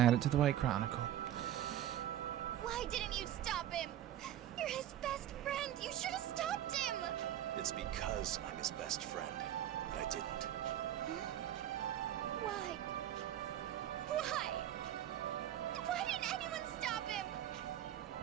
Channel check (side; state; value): left; quieter; 11.9 dB